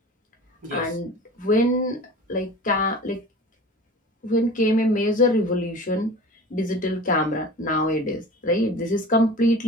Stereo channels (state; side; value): normal; both; correlation 0.38